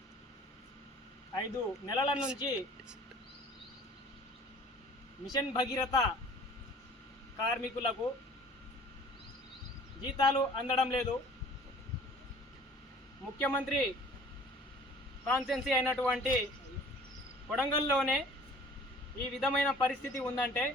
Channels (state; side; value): normal; both; correlation 0.49